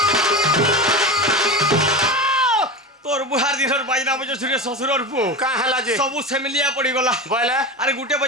तोर बुहार दिनर बाजना बजे सुरे ससुरर पु का हला जे सबु सेमिलिया पड़ी गला बोला अरे गुटे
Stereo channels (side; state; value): both; normal; correlation 0.25